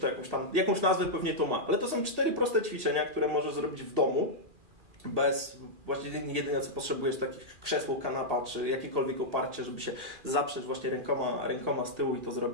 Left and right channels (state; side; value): late; left; 2.3 ms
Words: jakąś nazwę pewnie to ma, ale to są 4 proste ćwiczenia, które możesz zrobić w domu, właściwie jedyne co potrzebujesz, takich krzesło, kanapa, czy jakiekolwiek oparcie, żeby się zaprzeć właśnie rękoma z tyłu i to